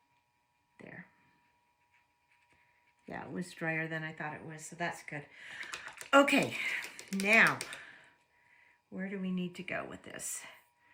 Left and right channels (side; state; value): both; identical; correlation 1.00